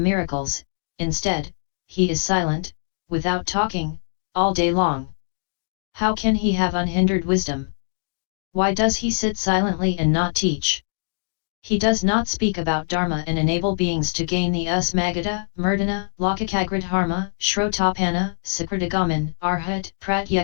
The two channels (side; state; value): right; silent; digital silence